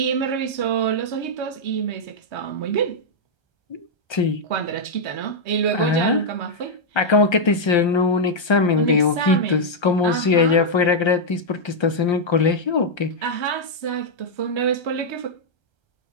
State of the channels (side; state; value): right; late; 1.3 ms